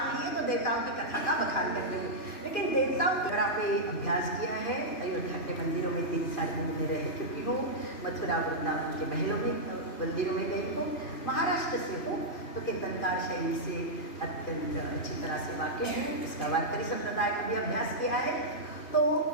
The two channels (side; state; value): right; late; 2.5 ms